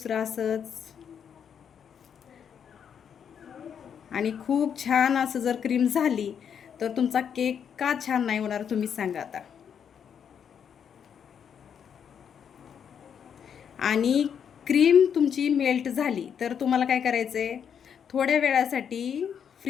असंच. आणि खूप छान असं जर क्रीम झाली तर तुमचा केक का छान नाही होणार तुम्ही सांगा आता. आणि क्रीम तुमची मेल्ट झाली तर तुम्हाला काय करायचं आहे, थोड्या वेळासाठी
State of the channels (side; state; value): right; quieter; 7.9 dB